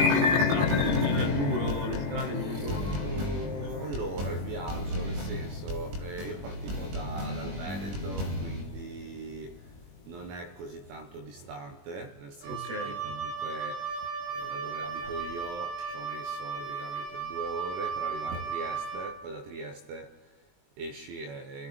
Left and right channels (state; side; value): late; left; 21 ms